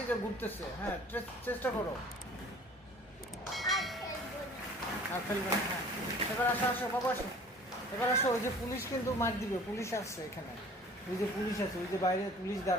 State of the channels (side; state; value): both; normal; correlation 0.48